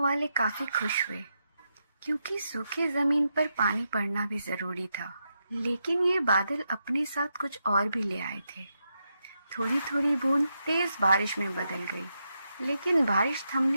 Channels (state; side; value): inverted; both; correlation -0.84